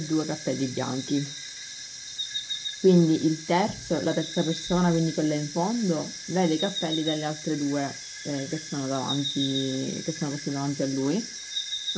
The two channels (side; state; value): both; identical; correlation 1.00